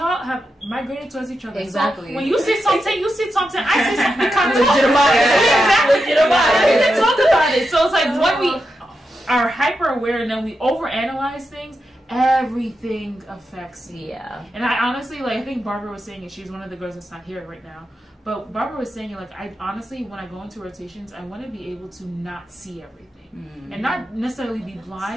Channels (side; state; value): both; normal; correlation 0.88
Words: have migrated towards each other. Exactly. So when you see something, I see something. We kind of talk about it. So it's like when we are hyper aware and then we overanalyze things, everything affects me. And I honestly, like, I think Barbara was saying it. She's one of the girls that's not here right now. But Barbara was saying it, like, I honestly, when I go into rotations, I want to be able to not see everything. And not necessarily be